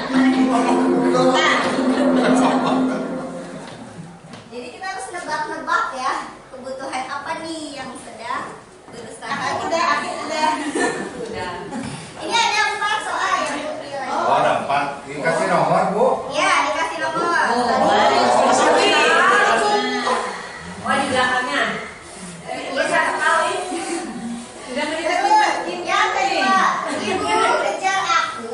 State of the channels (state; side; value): identical; both; correlation 1.00